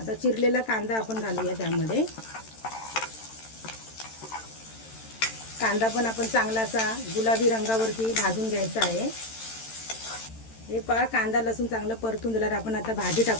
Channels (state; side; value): late; right; 13 ms